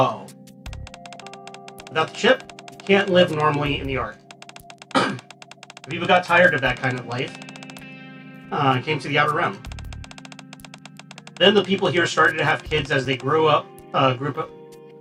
Without the chip, you can't live normally in the Ark. People got tired of that kind of life. Came to the Outer Rim. Then the people here started to have kids as they grew up.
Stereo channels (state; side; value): identical; both; correlation 1.00